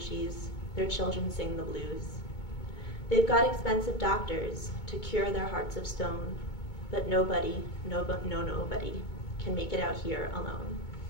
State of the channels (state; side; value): late; right; 2.2 ms